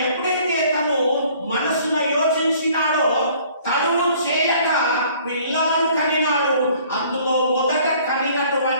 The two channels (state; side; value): inverted; both; correlation -0.56